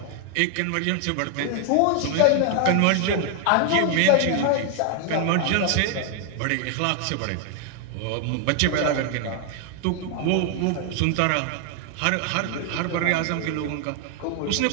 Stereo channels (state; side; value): different; both; correlation 0.00